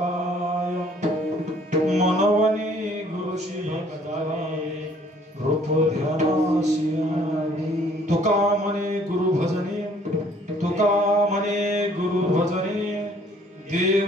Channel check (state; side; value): normal; both; correlation 0.59